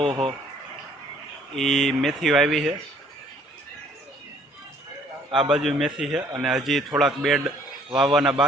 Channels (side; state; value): both; normal; correlation 0.60